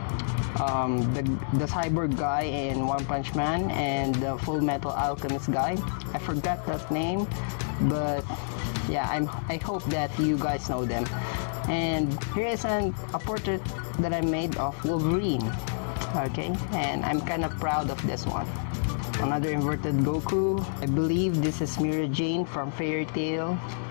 the cyborg guy in One Punch Man and the Full Metal Alchemist guy. I forgot that name, but yeah, I hope that you guys know them. And here is a portrait that I made of Wolverine. Okay, and I'm kind of proud of this one. Another inverted Goku. I believe this is Mira Jane from Fairy Tail.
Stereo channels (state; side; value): silent; right; digital silence